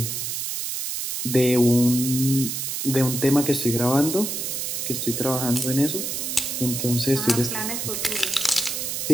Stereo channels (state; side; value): noise; right; hiss, 3 dB below the sound